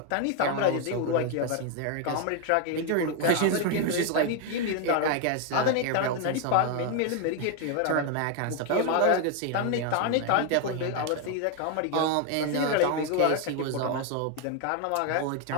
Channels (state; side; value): different; both; correlation 0.01